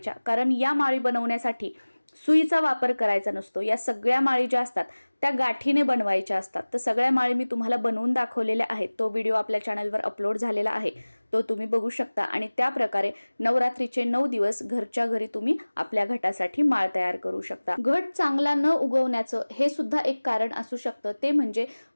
कारण या माळी बनवण्यासाठी सुईचा वापर करायचा नसतो. या सगळ्या माळी ज्या असतात त्या गाठीने बनवायच्या असतात. तर सगळ्या माळी मी तुम्हाला बनवून दाखवलेल्या आहेत. तो व्हिडिओ आपल्या चॅनलवर अपलोड झालेला आहे, तो तुम्ही बघू शकता. आणि त्या प्रकारे नवरात्रीचे 9 दिवस घरच्या घरी तुम्ही आपल्या घटासाठी माळ तयार करू शकता. घट चांगला न उगवण्याचं हे सुद्धा एक कारण असू शकतं. ते म्हणजे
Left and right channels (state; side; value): inverted; both; correlation -1.00